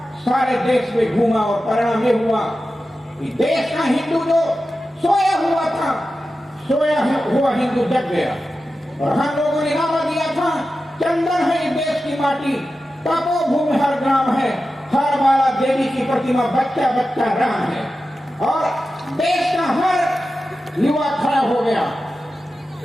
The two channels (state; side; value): normal; both; correlation 0.92